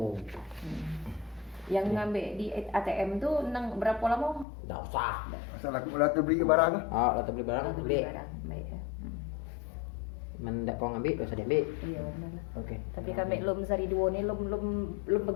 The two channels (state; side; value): drops out; right; at 4.5 s